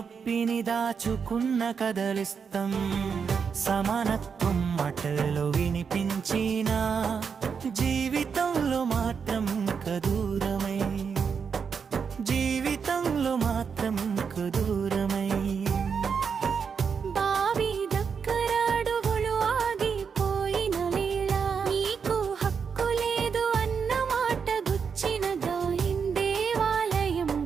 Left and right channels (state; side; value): quieter; left; 6.2 dB